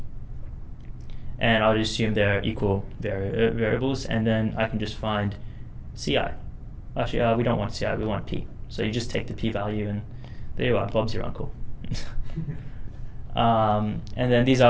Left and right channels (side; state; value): both; identical; correlation 1.00